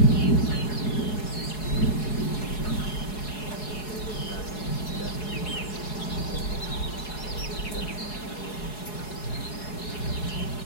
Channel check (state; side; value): late; right; 4.7 ms